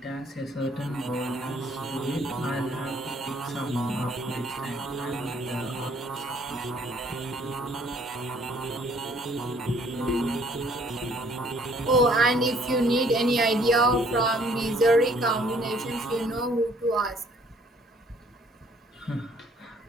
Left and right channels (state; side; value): normal; both; correlation 0.61